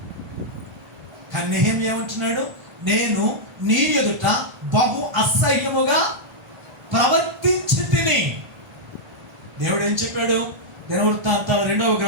కానీ నెహెమ్యా ఏమంటున్నాడు? నేను నీ ఎదుట బహు అసహ్యముగా ప్రవర్తించి తిని. దేవుడు ఏం చెప్పాడు? దినవృత్తాంతాల 2వ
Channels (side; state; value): left; late; 1.4 ms